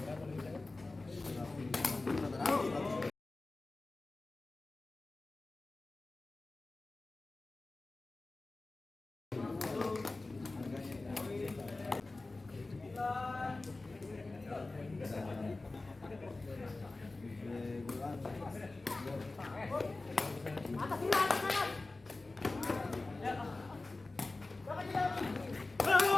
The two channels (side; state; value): right; quieter; 3.3 dB